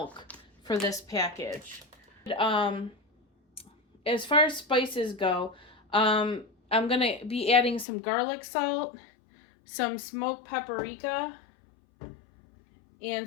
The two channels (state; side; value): drops out; right; at 7.9 s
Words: for this package. As far as spices go, I'm going to be adding some garlic salt, some smoked paprika,